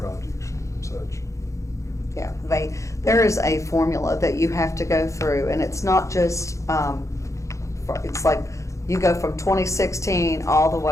and such. yeah, there is a formula that you have to go through, and it's not just, it's like, you go from 2016 all the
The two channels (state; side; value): late; right; 0.15 ms